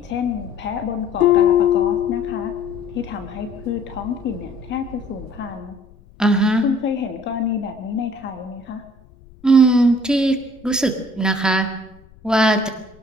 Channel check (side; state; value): left; noise; rumble, 26 dB below the sound